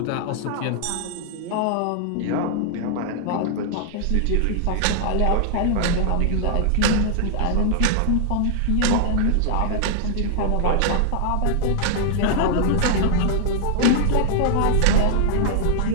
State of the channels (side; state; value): both; different; correlation 0.00